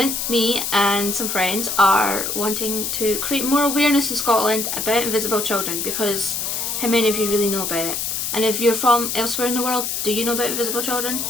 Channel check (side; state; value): left; noise; hiss, 2 dB below the sound